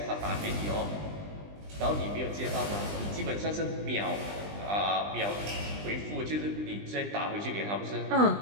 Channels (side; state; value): left; late; 20 ms